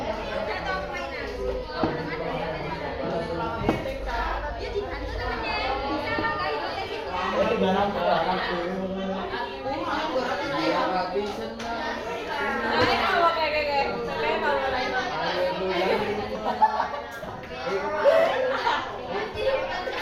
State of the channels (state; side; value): identical; both; correlation 1.00